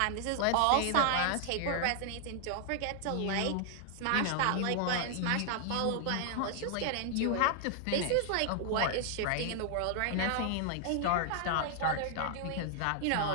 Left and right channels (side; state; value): both; different; correlation 0.00